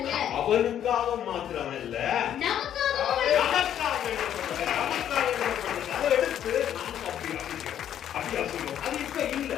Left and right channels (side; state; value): right; quieter; 10.2 dB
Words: அவனுக்காக மாத்திரமல்ல, நமக்காக எண்ணப்பட்டது. அதை எடுத்து நாம அப்படி அசுகிறோம். அது இப்ப இல்ல.